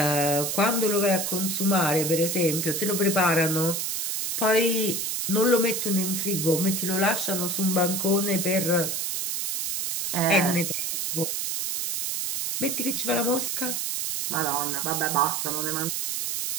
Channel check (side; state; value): right; noise; hiss, 1 dB below the sound